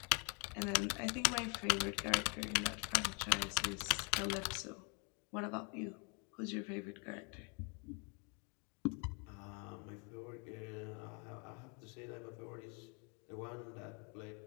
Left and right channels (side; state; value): right; quieter; 35.0 dB